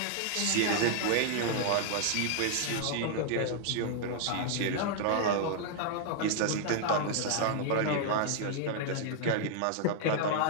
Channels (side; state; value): both; different; correlation 0.00